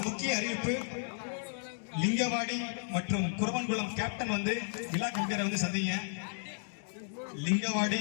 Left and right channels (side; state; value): right; silent; digital silence